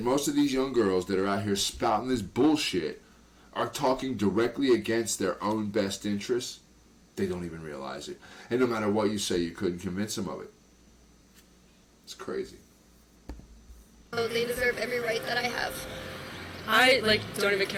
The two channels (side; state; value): both; identical; correlation 1.00